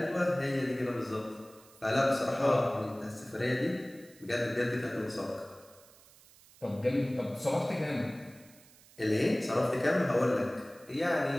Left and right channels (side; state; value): right; noise; hiss, 25 dB below the sound